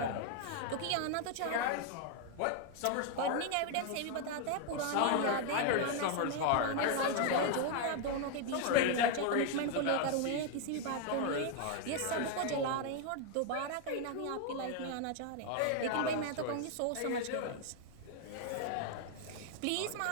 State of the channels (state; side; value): different; both; correlation 0.00